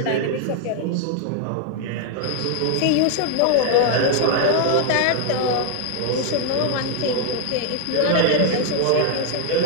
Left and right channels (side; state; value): both; different; correlation 0.00